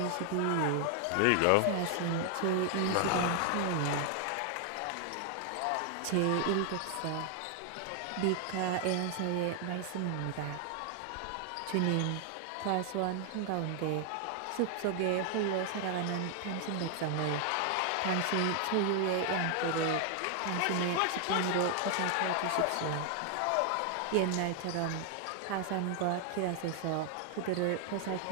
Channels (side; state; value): both; different; correlation 0.00